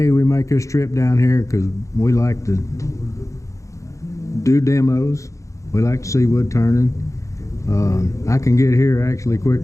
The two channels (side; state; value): right; late; 0.15 ms